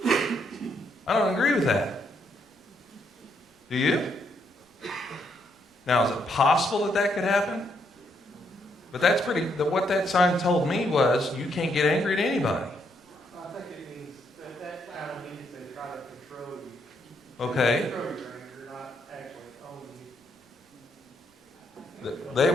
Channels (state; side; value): normal; both; correlation 0.75